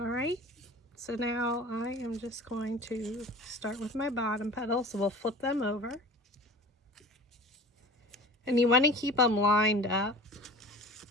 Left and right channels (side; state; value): both; normal; correlation 0.40